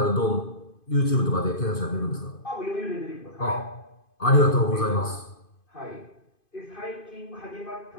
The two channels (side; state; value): right; late; 2.5 ms